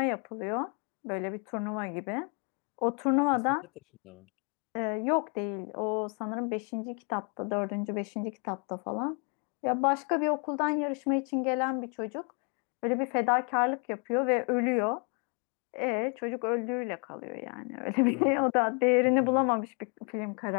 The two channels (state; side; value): quieter; right; 36.6 dB